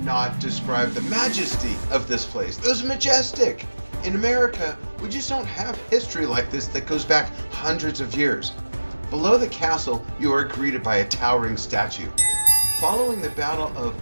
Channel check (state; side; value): inverted; both; correlation -1.00